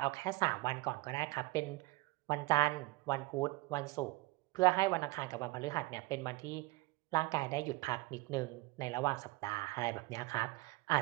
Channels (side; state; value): left; quieter; 21.8 dB